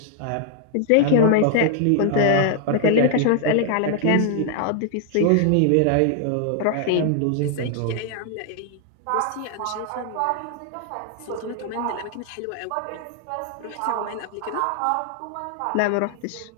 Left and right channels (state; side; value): different; both; correlation 0.00